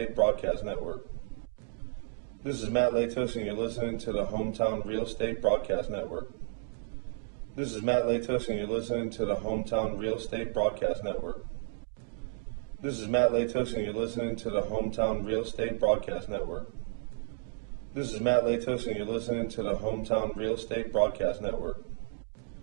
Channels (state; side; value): silent; left; digital silence